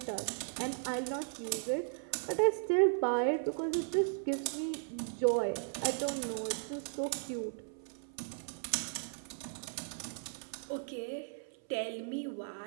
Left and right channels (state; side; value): silent; left; 54 dB below the other